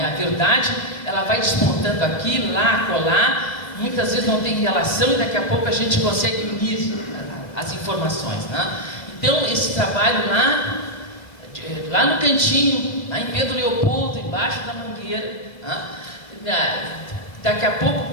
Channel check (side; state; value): right; late; 2.1 ms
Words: A verdade, ela vai despontando aqui, lá, colar, muitas vezes não tem relação e daqui a pouco a gente consegue unir as informações, né? Então, esse trabalho lá no cantinho, lá em Pedro Leopoldo, embaixo da mangueira, né? Daqui a pouco